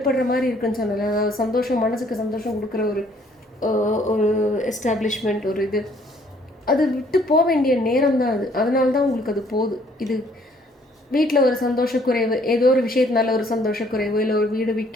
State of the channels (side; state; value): both; normal; correlation 0.62